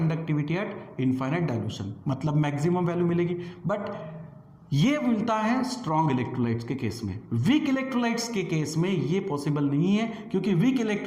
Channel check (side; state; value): both; identical; correlation 1.00